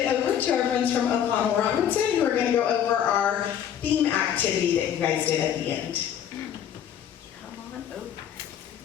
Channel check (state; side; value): quieter; right; 9.5 dB